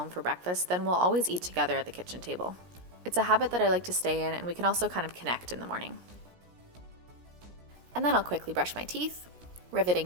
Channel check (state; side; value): late; left; 17 ms